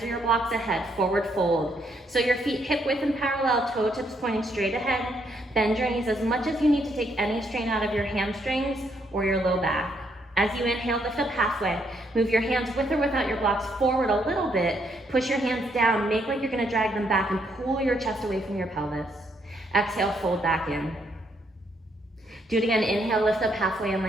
or your blocks ahead, forward fold. So your feet hip width and parallel, toe tips pointing straight ahead. Bend your knees as much as you need to take any strain out of your hamstrings or your low back. As you inhale, lift up halfway. Move your hands with or without your blocks forward a little bit. Push your hands down, make like you're gonna drag them back and pull your chest away from your pelvis. Exhale, fold back in. Do it again, inhale, lift up halfway and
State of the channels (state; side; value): normal; both; correlation 0.73